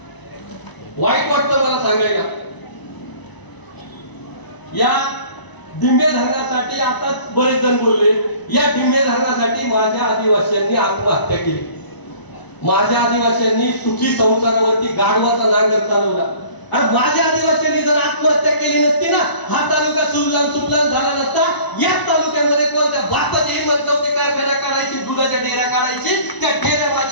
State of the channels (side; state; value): right; late; 1.0 ms